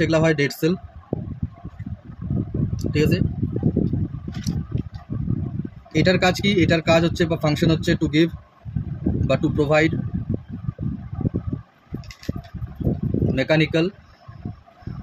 হয় ডেড সেল, ঠিক আছে? এটার কাজ কি? এটার কাজ হচ্ছে বা ফাংশন হচ্ছে টু গিভ বা to provide mechanical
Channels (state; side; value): identical; both; correlation 1.00